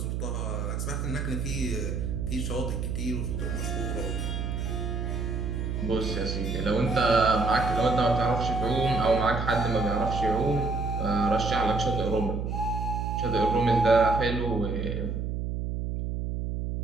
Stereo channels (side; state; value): right; noise; hum, 2 dB below the sound